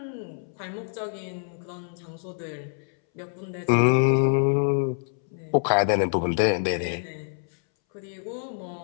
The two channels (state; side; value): silent; right; 61 dB below the other